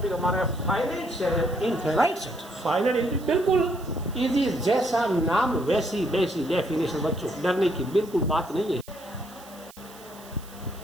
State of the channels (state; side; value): noise; right; hiss, 21 dB below the sound